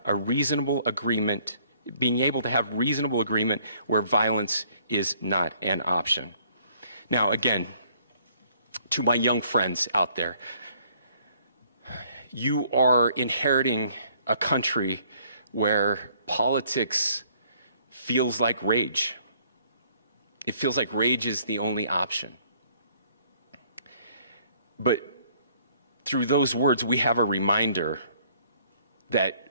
a reasonable agreement, where violence is not an option. Now, again, to my young friends out there, you are inheriting a country where politics feels like rage. It feels like rage is the only option. But through those words, we have a reminder that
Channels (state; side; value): inverted; both; correlation -0.62